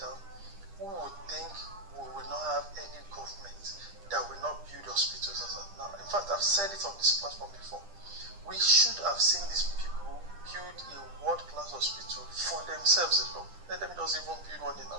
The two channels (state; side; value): late; left; 10 ms